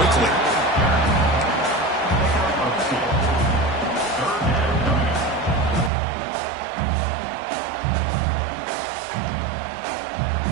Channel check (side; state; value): left; drops out; at 5.9 s